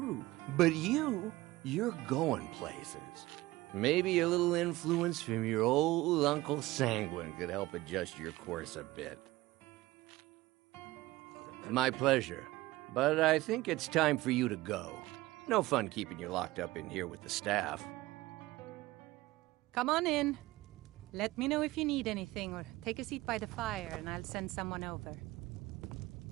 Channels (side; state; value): left; quieter; 18.9 dB